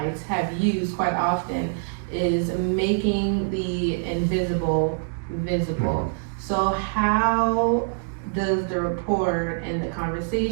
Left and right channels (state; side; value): silent; left; digital silence